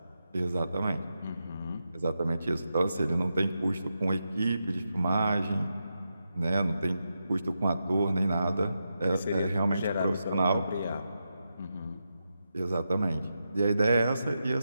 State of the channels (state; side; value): inverted; both; correlation -0.87